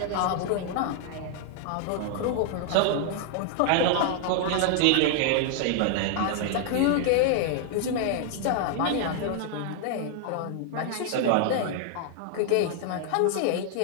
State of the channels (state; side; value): different; both; correlation 0.00